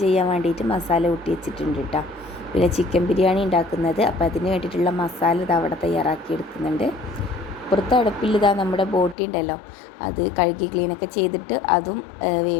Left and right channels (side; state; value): right; drops out; at 9.2 s